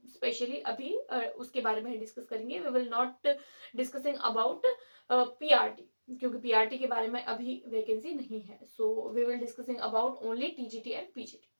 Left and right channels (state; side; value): inverted; both; correlation -1.00